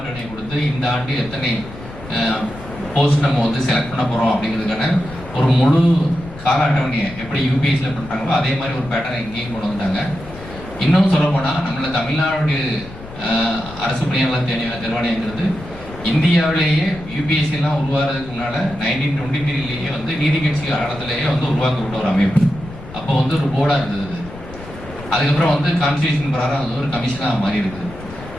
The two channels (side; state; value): left; noise; rumble, 15 dB below the sound